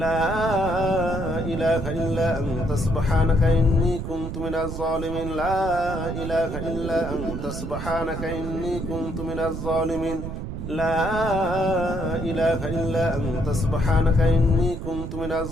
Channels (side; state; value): right; noise; rumble, 6 dB below the sound